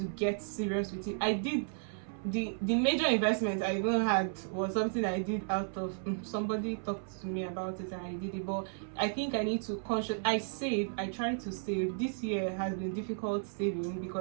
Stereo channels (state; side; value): silent; left; 55 dB below the other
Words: get serious with it. I did the major investment I even had was something I did out of somebody talked to me about it and I did it. But I think I need to I try to save. This year has been difficult saving